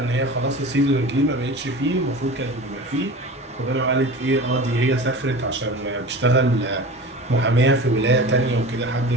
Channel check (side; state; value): both; normal; correlation 0.35